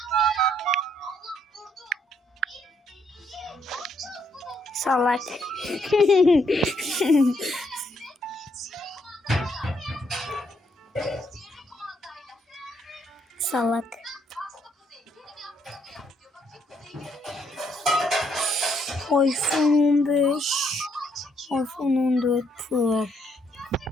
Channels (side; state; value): both; normal; correlation 0.73